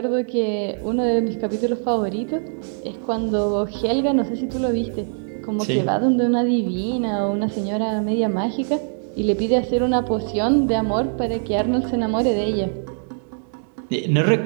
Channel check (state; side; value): silent; left; digital silence